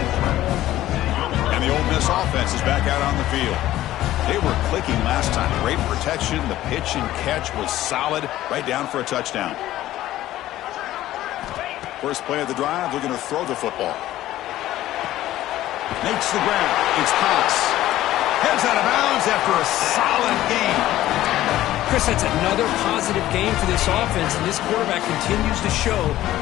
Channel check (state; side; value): quieter; right; 14.5 dB